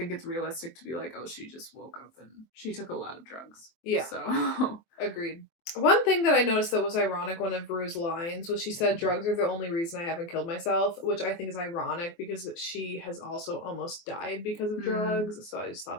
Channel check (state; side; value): late; right; 24 ms